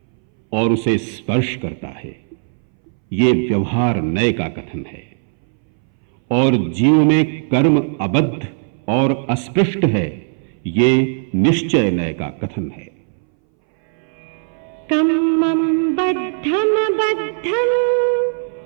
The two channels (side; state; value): left; silent; 64 dB below the other